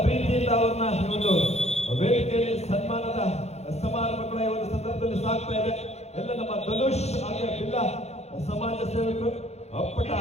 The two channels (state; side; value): late; right; 0.31 ms